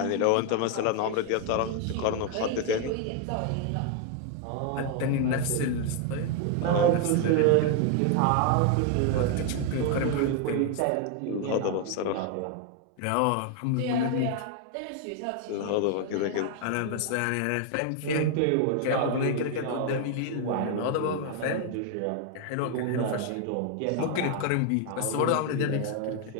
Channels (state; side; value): different; both; correlation 0.00